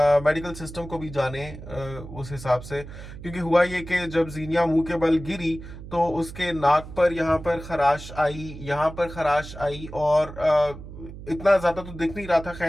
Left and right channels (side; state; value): right; noise; hum, 13 dB below the sound